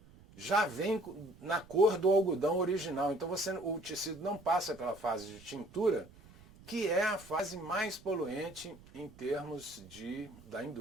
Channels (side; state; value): right; noise; rumble, 22 dB below the sound